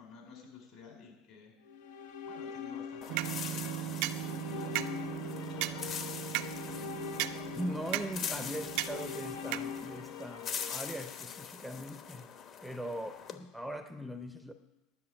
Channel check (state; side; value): normal; both; correlation 0.39